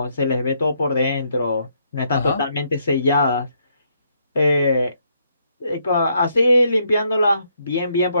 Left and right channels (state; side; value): inverted; both; correlation -0.73